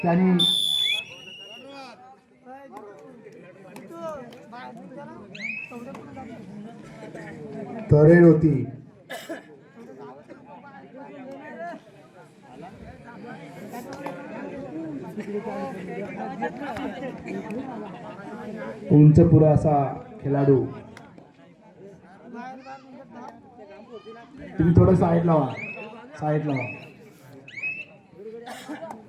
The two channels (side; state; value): both; identical; correlation 1.00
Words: त्यांनी तरेड होती. उंच पुरा असा खेळाडू. तुम्ही थोडं साईड लावा, साईड लावा.